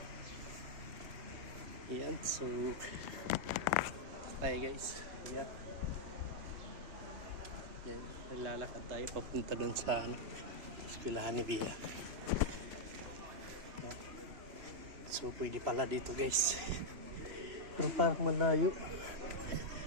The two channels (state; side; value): late; left; 2.9 ms